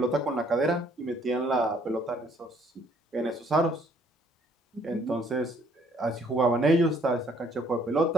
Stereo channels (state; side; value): normal; both; correlation 0.63